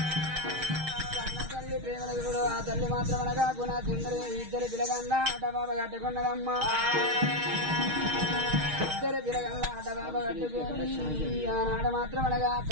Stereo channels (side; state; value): left; late; 6.4 ms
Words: కన్న తల్లి ప్రేమల గురుడు ఆ తల్లి మాత్రం అనగా గుణ సుందరి ఇద్దరు పిల్లగల్ల అడ్డబాబ కట్టుకున్నదమ్మా ఇద్దరు పిల్లగల్ల అడ్డబాబ కట్టుకొని ఆనాడు మాత్రం అనగా